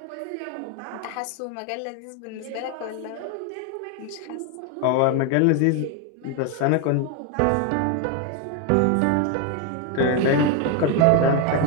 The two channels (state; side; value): different; both; correlation 0.01